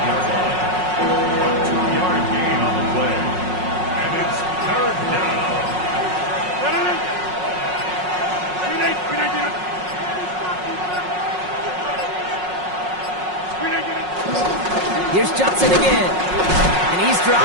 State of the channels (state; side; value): late; left; 5.5 ms